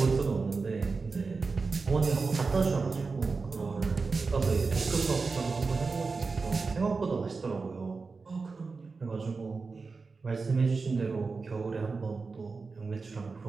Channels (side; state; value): left; quieter; 4.4 dB